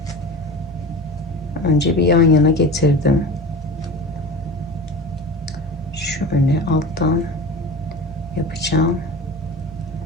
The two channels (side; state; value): both; normal; correlation 0.33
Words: önce bir yan yana getirdim. Şöyle alttan yapacağım.